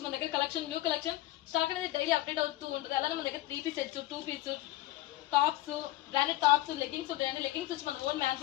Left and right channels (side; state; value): right; quieter; 16.2 dB